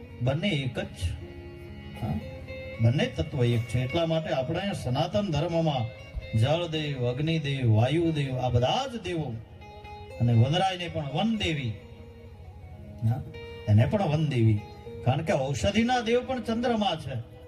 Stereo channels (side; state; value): both; identical; correlation 1.00